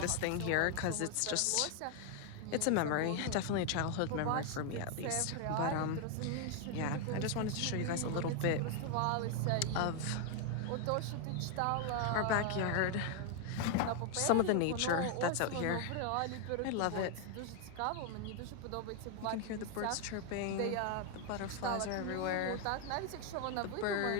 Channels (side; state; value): both; different; correlation 0.00